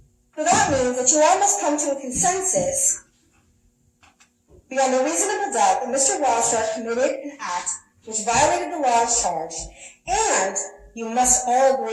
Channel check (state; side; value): identical; both; correlation 1.00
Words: that means that you all must come to a consensus beyond a reasonable doubt that Mr. Wildstar committed an act which violated the laws charged, and you must all